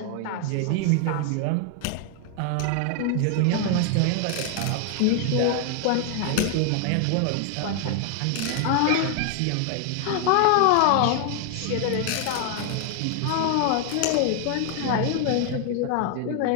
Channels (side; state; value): both; different; correlation 0.00